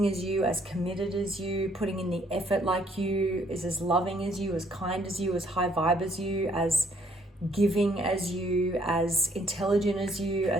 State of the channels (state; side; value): normal; both; correlation 0.66